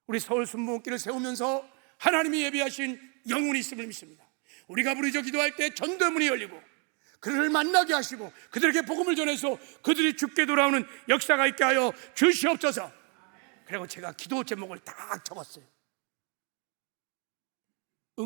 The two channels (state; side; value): quieter; left; 36.2 dB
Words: 우리 서울 순복음길을 세우면서 하나님이 예비하신 영혼이 있음을 믿습니다. 우리가 부르짖어 기도할 때 전도의 문이 열리고 그들을 만나게 하시고 그들에게 복음을 전해서 그들이 죽게 돌아오는 역사가 있게 하여 주시옵소서. 그리고 제가 기도 제목을 딱 적었어요.